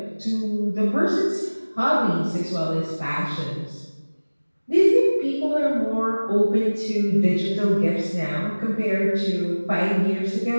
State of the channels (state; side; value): inverted; both; correlation -1.00